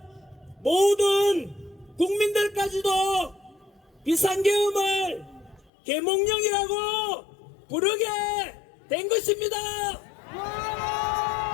모든 국민들까지도 비상계엄을 계몽령이라고 부르게 된 것입니다.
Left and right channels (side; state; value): right; drops out; at 5.7 s